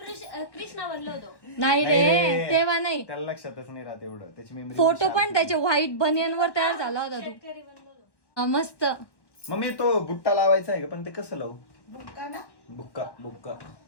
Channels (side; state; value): right; late; 1.2 ms